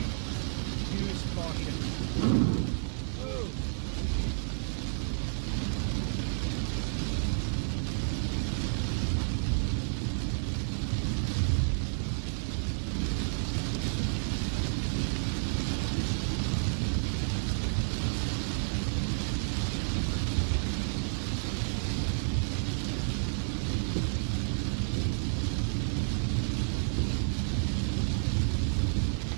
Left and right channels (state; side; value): silent; left; 57 dB below the other